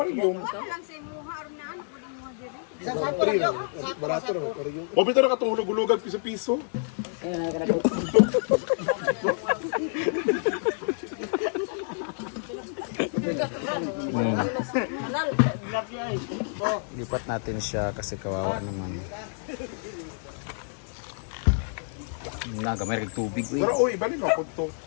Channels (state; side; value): silent; right; 59 dB below the other